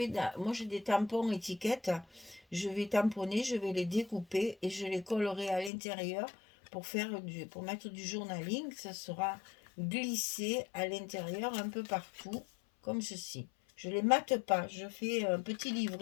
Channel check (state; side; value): drops out; right; at 5.7 s